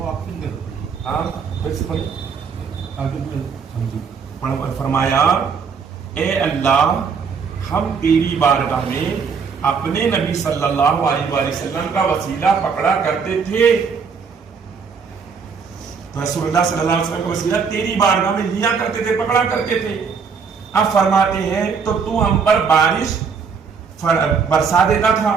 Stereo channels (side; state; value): left; quieter; 5.8 dB